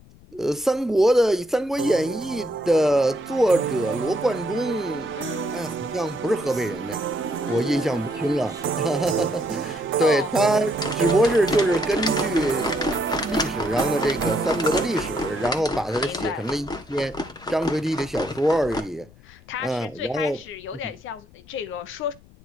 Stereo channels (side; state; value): left; noise; rumble, 25 dB below the sound